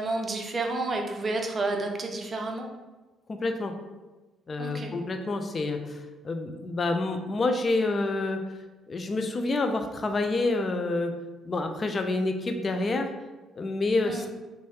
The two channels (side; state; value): both; normal; correlation 0.82